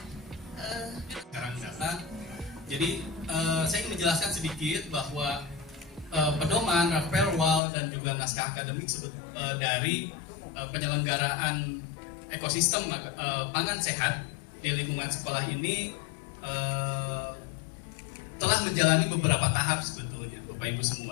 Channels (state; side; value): drops out; right; at 7.6 s